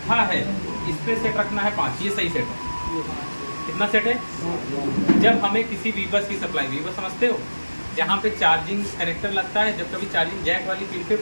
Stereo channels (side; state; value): both; inverted; correlation -1.00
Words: है इस पे सेट रखना है 5, ये सही सेट है। कितना सेट है? जब हमें किसी वीबस की सप्लाई, वीबस समझते हो, जहाँ पे चार्जिंग कनेक्टर लगता है, जब कभी चार्जिंग जैक वाली पिन पे